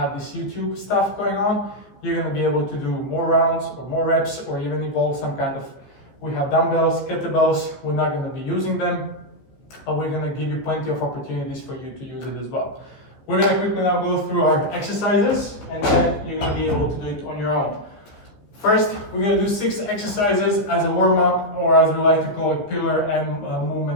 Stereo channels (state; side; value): late; right; 14 ms